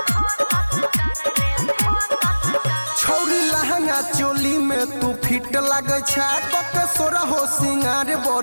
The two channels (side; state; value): both; inverted; correlation -1.00